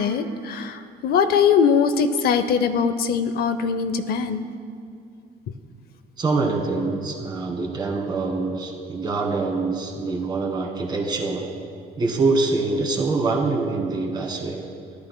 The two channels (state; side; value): normal; both; correlation 0.43